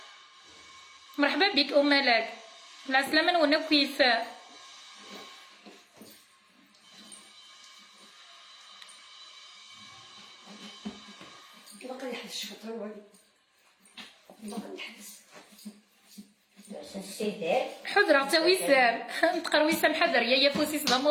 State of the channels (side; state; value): both; identical; correlation 1.00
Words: مرحبا بك مالك العسلامه وانا كيف باقي يحبس شفتها والو باقي يحبس حضرة تا وسام نتقر وسام حذر يا فوسي